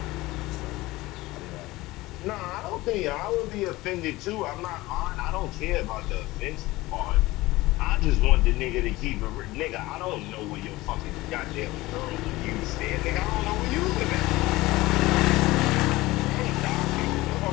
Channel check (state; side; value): quieter; right; 19.4 dB